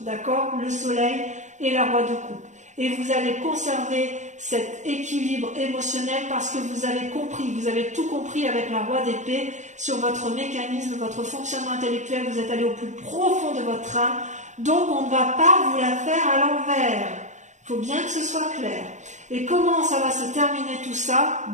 d'accord? Le soleil et la roi de coupe. Et vous allez conserver cet équilibre émotionnel parce que vous avez compris, vous avez tout compris avec la roi d'épée sur votre mécanisme, votre fonctionnement intellectuel, vous êtes allé au plus profond de votre âme, donc on ne va pas vous la faire à l'envers. Il faut bien que ce soit clair. Et comment ça va se terminer tout ça?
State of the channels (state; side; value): late; left; 0.35 ms